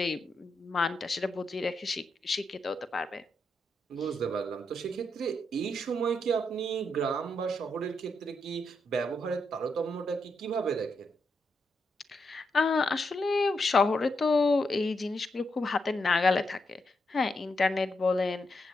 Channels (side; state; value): both; normal; correlation 0.82